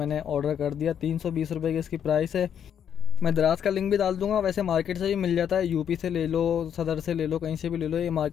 ऑर्डर कर दिया। 320 रुपये की इसकी प्राइस है। मैं दराज का लिंक भी डाल दूंगा। वैसे मार्केट से भी मिल जाता है, यूपी से ले लो, सदर से ले लो, कहीं से भी ले लो। ये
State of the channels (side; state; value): right; quieter; 8.7 dB